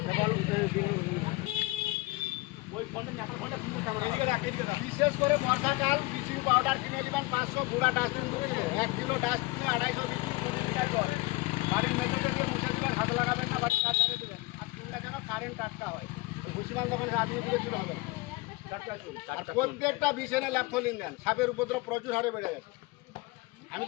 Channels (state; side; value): quieter; right; 22.0 dB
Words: বিশেষ করে বর্ষাকাল ব্লিচিং পাউডার কিনে দিবেন 500, গুঁড়া ডাস্টবিন করে 1 কিলো ডাস্টবিনে 250 লিটার জল। বাড়ির মেঝেতে মুছে দেবেন, হাত লাগাবেন না, বাড়ির কাজ ছাড়ে দেবেন। আর চুলটা যেন কারেন্ট টাটকা হয়। ভুসিমান দোকানে আদমি দিলে চুল হবে। প্রত্যেকটা বিছানে ল্যাপথলিন দেন। সাপের উপদ্রব প্রচুর হারে বেড়ে গেছে। আমি